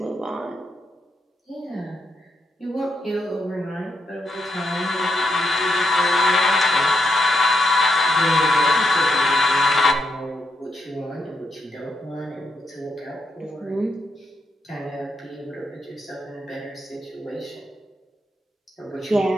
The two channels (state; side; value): normal; both; correlation 0.81